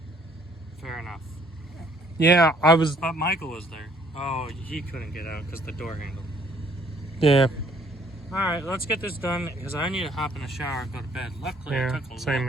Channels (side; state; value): both; normal; correlation 0.62